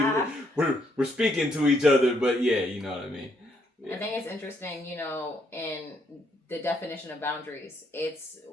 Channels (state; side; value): normal; both; correlation 0.72